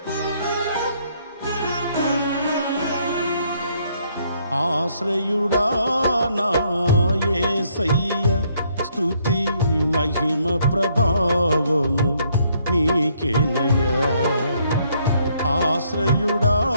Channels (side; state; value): both; inverted; correlation -0.69